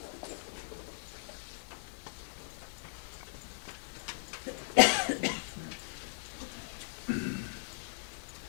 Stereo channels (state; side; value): silent; right; 53 dB below the other